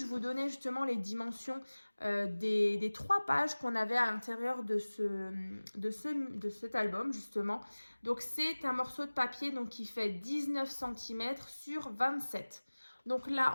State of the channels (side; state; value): both; inverted; correlation -1.00